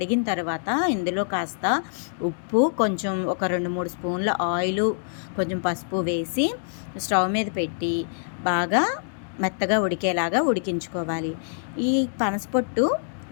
తర్వాత ఇందులో కాస్త ఉప్పు, కొంచెం ఒక 2-3 స్పూన్ల ఆయిలు, కొంచెం పసుపు వేసి స్టవ్ మీద పెట్టి బాగా మెత్తగా ఉడికేలాగా ఉడికించుకోవాలి. ఈ పనసపొట్టు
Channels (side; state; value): right; silent; digital silence